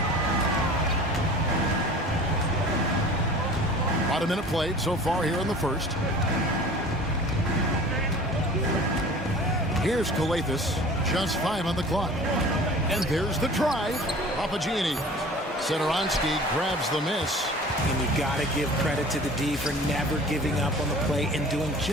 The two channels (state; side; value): normal; both; correlation 0.43